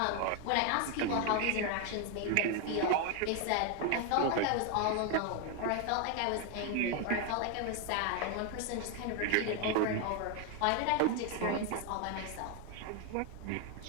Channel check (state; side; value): different; both; correlation 0.01